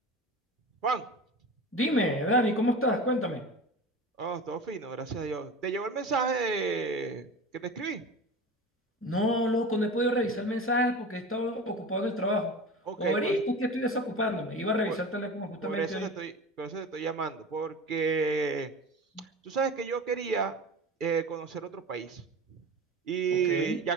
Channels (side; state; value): both; normal; correlation 0.32